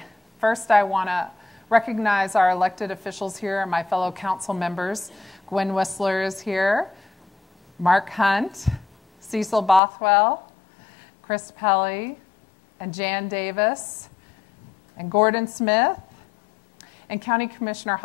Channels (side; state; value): right; drops out; at 9.8 s